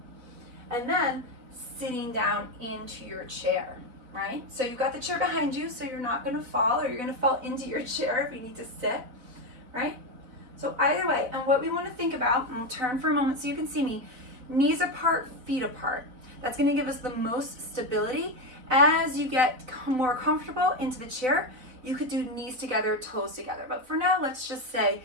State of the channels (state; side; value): late; left; 4.0 ms